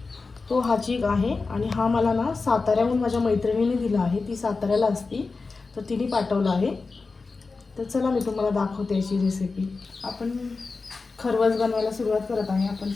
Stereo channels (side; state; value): right; quieter; 4.1 dB